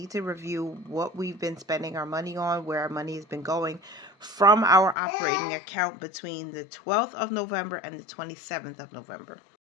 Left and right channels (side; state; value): right; drops out; at 5.0 s